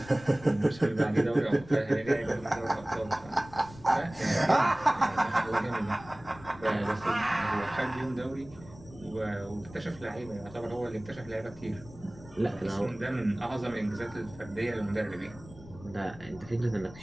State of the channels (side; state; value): left; noise; rumble, 19 dB below the sound